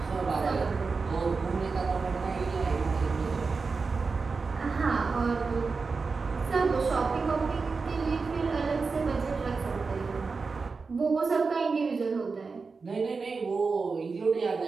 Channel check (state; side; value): quieter; left; 4.5 dB